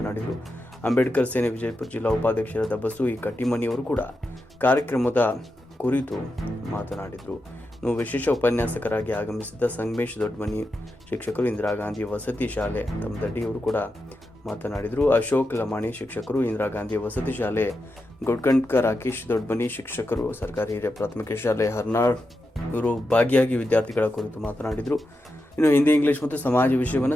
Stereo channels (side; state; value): both; normal; correlation 0.88